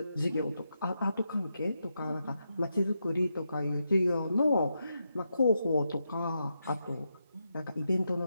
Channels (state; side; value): inverted; both; correlation -0.85